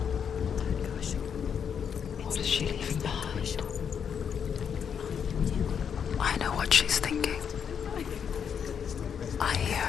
What is she leaving behind? I know what she's thinking. I hear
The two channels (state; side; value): quieter; right; 7.5 dB